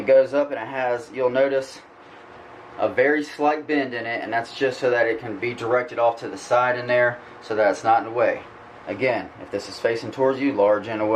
goes up and it has, you'll notice, a very slight bend in it, and that's just so that it can be directed off to the side in there so that it's not in the way. Again, if this is facing towards you, large in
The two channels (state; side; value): identical; both; correlation 1.00